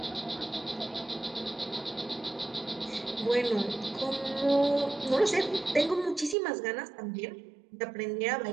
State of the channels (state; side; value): drops out; left; at 6.4 s